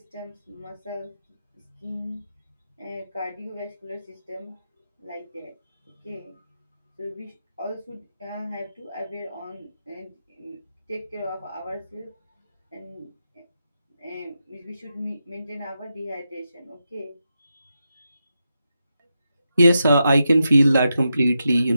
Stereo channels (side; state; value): both; inverted; correlation -0.87